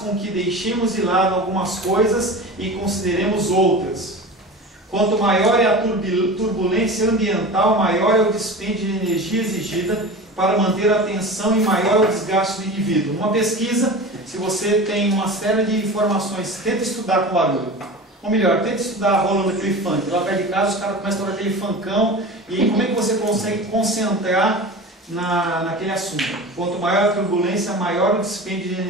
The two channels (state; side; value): normal; both; correlation 0.33